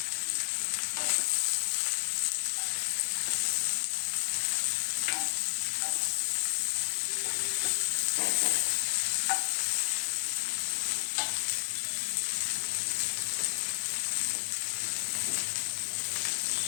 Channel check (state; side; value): silent; right; digital silence